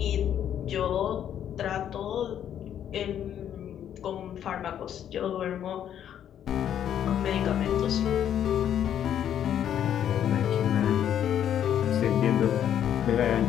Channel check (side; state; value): right; quieter; 9.9 dB